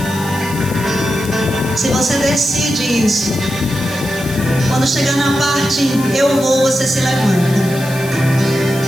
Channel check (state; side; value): noise; left; hiss, 14 dB below the sound